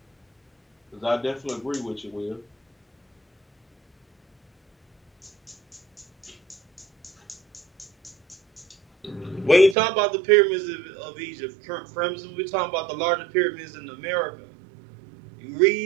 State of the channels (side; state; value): left; drops out; at 9.8 s